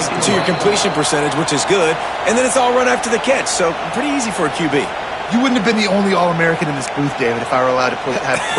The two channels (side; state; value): both; identical; correlation 1.00